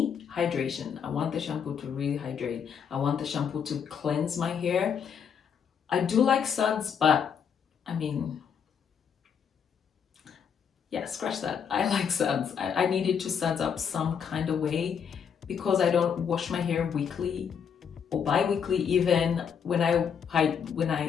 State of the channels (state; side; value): quieter; right; 7.3 dB